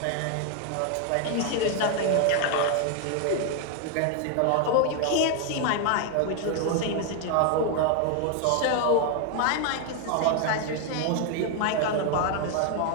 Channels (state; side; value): different; both; correlation 0.00